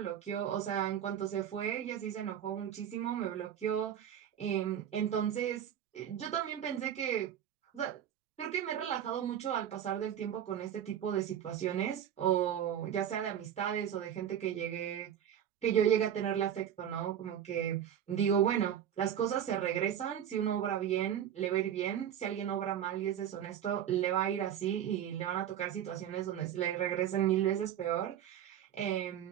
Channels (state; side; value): quieter; left; 9.9 dB